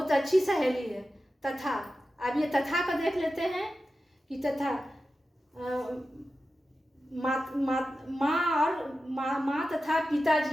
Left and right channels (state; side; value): normal; both; correlation 0.93